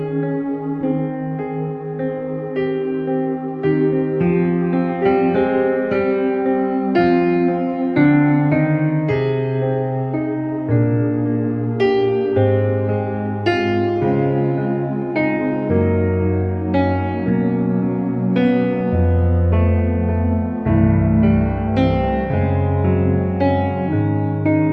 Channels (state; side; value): identical; both; correlation 1.00